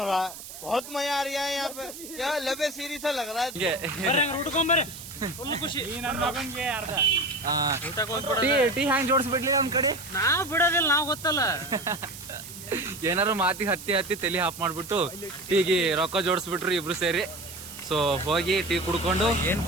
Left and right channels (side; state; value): right; noise; hiss, 13 dB below the sound